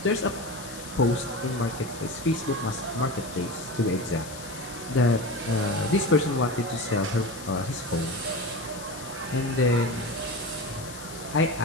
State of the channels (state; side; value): noise; left; hiss, 14 dB below the sound